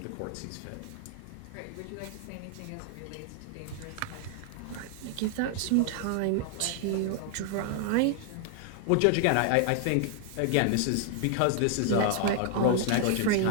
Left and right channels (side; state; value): both; different; correlation 0.00